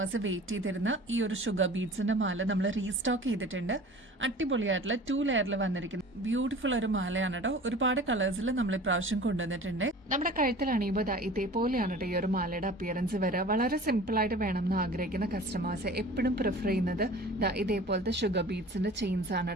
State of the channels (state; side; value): normal; both; correlation 0.42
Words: വെയിറ്റ് ചെയ്തിരുന്ന ഈ ഒരു ഷുഗർ ബീഡ്സിന്റെ മാല നമ്മൾ റീസ്റ്റോക്ക് ചെയ്തിട്ടുണ്ട്. അടിപൊളിയായിട്ടുള്ള 2 ലെയറിൽ വന്നിരിക്കുന്ന ബ്യൂട്ടിഫുൾ ഒരു മാലയാണ് കേട്ടോ. ഒരുപാട് കളേഴ്സിൽ നമ്മൾ ഇപ്രാവശ്യം കൊണ്ടുവന്നിട്ടുണ്ട്. നമ്മുടെ കഴുത്തിൽ അണിയുമ്പോൾ ഇതേപോലെയാണ് കേട്ടോ ഈ ഒരു മാലയുടെ അപ്പിയറൻസ് വരിക. വളരെ സിമ്പിൾ ആയിട്ട് വേണം എന്ന് ആഗ്രഹിക്കുന്ന കസ്റ്റമേഴ്സ് എപ്പോഴും പ്രിഫർ ചെയ്യുന്നത് ഇതേപോലത്തെ ഷുഗർ ബീഡ്സിന്റെ ചെയിൻസ് ആണ്